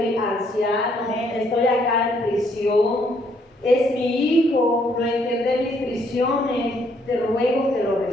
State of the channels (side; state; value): both; normal; correlation 0.69